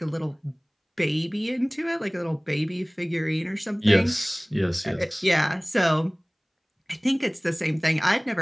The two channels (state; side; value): identical; both; correlation 1.00